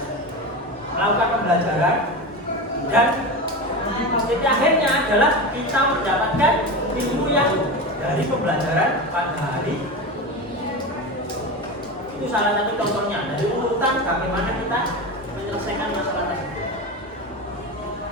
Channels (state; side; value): normal; both; correlation 0.23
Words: melakukan pembelajaran, dan titik akhirnya adalah kita mendapatkan ilmu yang dari pembelajaran pada hari Itu salah satu contohnya dari urutan bagaimana kita menyelesaikan masalah tersebut.